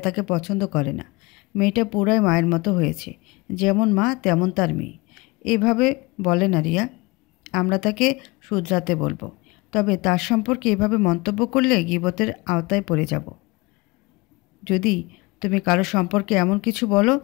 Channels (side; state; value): right; quieter; 24.1 dB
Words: তাকে পছন্দ করে না। মেয়েটা পুরাই মায়ের মতো হয়েছে, যেমন মা তেমন তার মেয়ে। এভাবে বলে না রিয়া। আমরা তাকে শুধরাতে বলবো, তবে তার সম্পর্কে এভাবে মন্তব্য করলে গীবতের আওতায় পড়ে যাব। যদি তুমি কারো সম্পর্কে এমন কিছু বলো